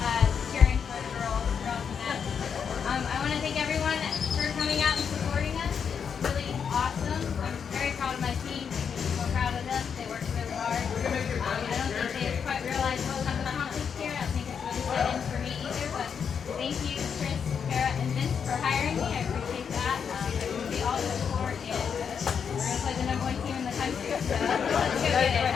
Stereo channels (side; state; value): right; quieter; 6.9 dB